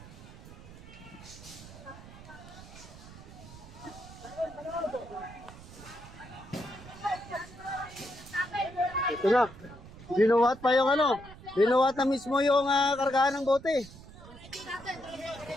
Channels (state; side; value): noise; right; rumble, 17 dB below the sound